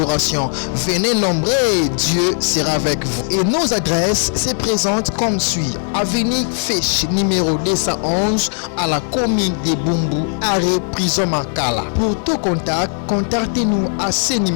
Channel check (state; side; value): silent; right; 61 dB below the other